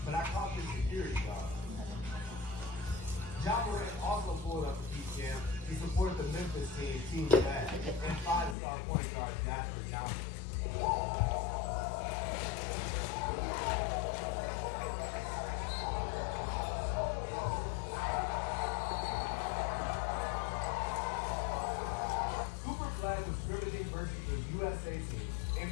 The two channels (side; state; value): right; drops out; at 8.6 s